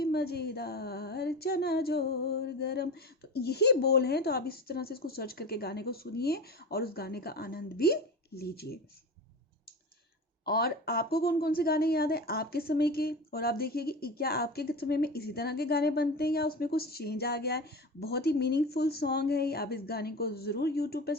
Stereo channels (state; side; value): normal; both; correlation 0.29